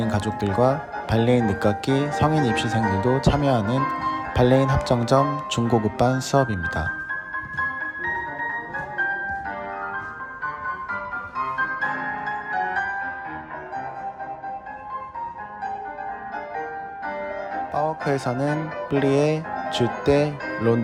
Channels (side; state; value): both; identical; correlation 1.00